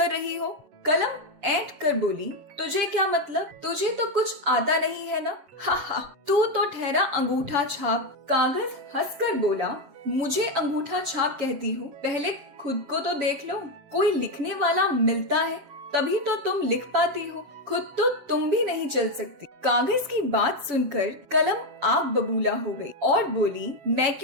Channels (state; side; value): late; left; 7.5 ms